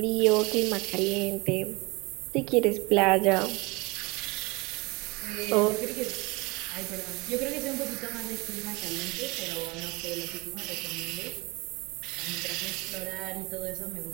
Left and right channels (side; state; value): left; quieter; 25.9 dB